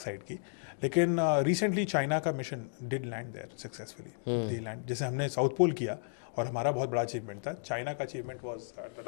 साइड की. लेकिन रिसेंटली चाइना का mission did land there successfully. They land, जैसे हमने साउथ पोल किया और हमारा बहुत बड़ा अचीवमेंट था, चाइना का achievement was the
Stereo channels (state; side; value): silent; right; digital silence